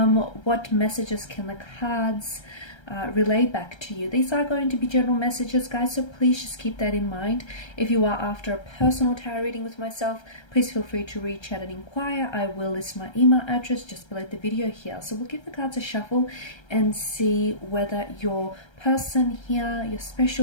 messages can the cards relay back to you? These are going to be general messages, guys, so please just keep that in mind. If you are after a personal tarot reading with myself, please feel free to reach out and inquire. I will list my email address just below the video here. So we'll give the cards a shuffle and see whether your person here, your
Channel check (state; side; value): late; right; 1.3 ms